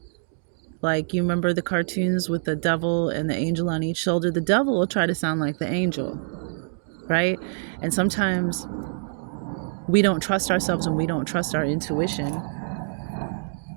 Like, you remember the cartoons with the devil and the angel on each shoulder? The devil will try to sound like the angel, right? And sometimes we don't trust ourselves and we don't trust our intuition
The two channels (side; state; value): left; silent; digital silence